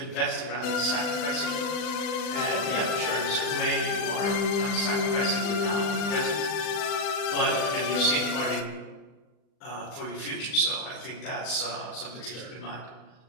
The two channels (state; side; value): late; right; 40 ms